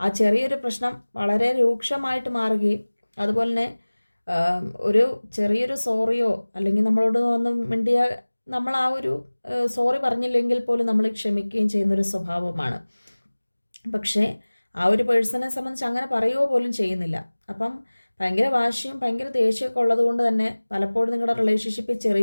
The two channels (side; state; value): both; inverted; correlation -1.00